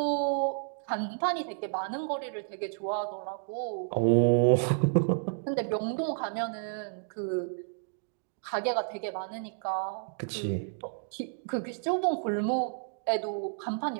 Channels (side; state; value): left; silent; digital silence